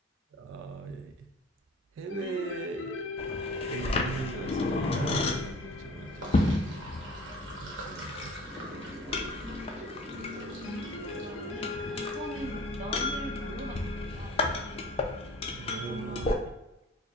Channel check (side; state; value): both; normal; correlation 0.46